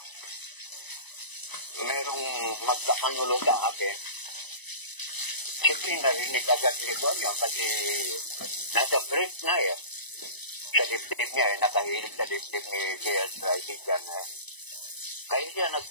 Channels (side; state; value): right; late; 1.0 ms